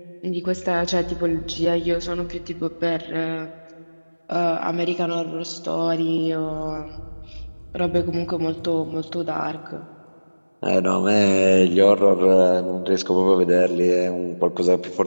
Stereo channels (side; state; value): both; inverted; correlation -1.00